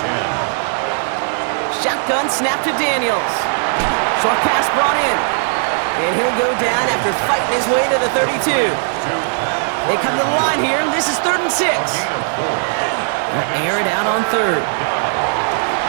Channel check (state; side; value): silent; left; 59 dB below the other